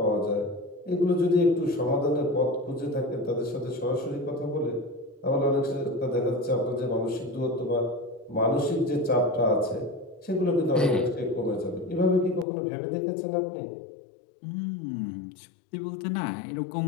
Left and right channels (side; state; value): right; drops out; at 12.5 s